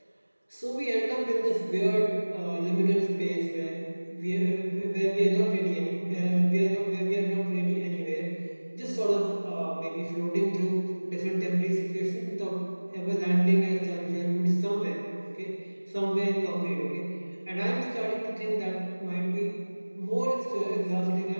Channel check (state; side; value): inverted; both; correlation -1.00